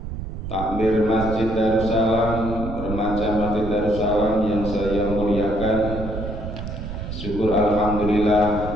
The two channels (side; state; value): right; noise; rumble, 7 dB below the sound